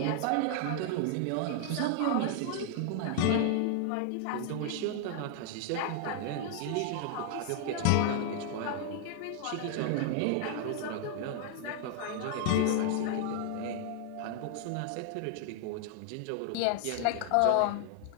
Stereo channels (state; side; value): different; both; correlation 0.00